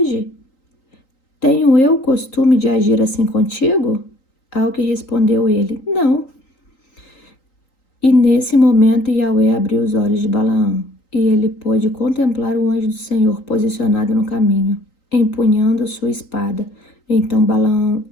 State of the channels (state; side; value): late; right; 3.9 ms